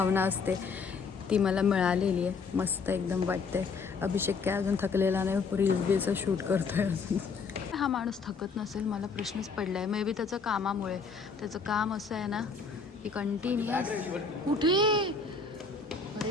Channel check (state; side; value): quieter; right; 4.8 dB